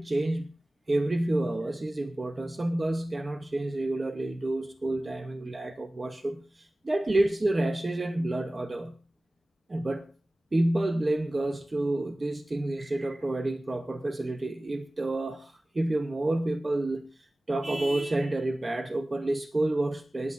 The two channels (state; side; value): normal; both; correlation 0.97